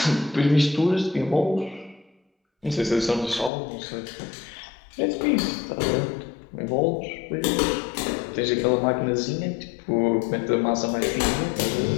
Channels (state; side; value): drops out; right; at 3.5 s